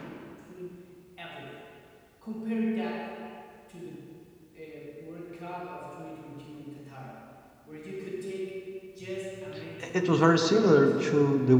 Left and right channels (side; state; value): both; identical; correlation 1.00